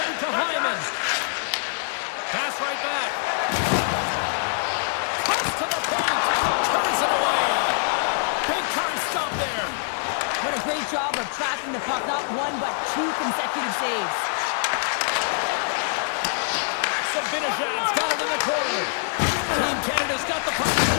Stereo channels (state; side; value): silent; right; digital silence